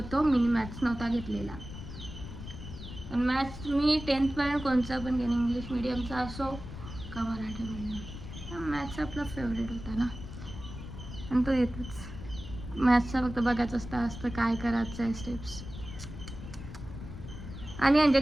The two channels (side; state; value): left; noise; rumble, 11 dB below the sound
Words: मी मॅथ्स नव्हता घेतलेला. पण मॅथ्स मी 10thपर्यंत कोणचा पण घेईन, इंग्लिश मीडियमचा असो का मराठी मीडियम. मॅथ्स आपला फेवरेट होता ना, आणि तो येतोच. मॅथ्सचा फक्त बघायचं असतं काय करायचं आहे स्टेप्स. आणि म्हणजे